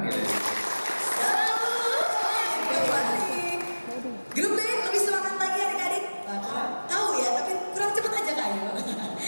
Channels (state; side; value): inverted; both; correlation -1.00